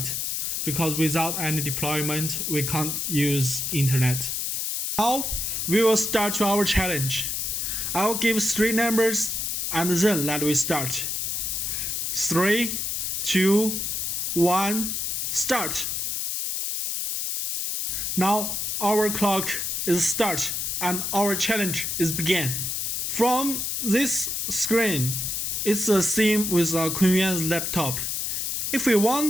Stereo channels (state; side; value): noise; left; hiss, 1 dB below the sound